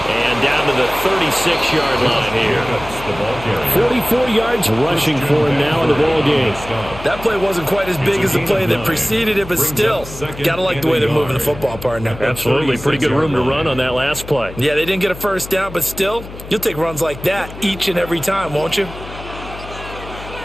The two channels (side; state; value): left; noise; hum, 14 dB below the sound